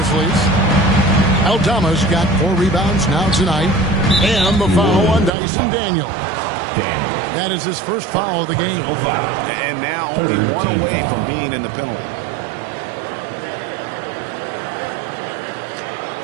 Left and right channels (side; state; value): left; drops out; at 5.3 s